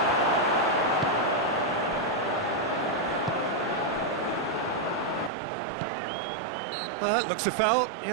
Looks a foul.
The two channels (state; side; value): drops out; left; at 5.3 s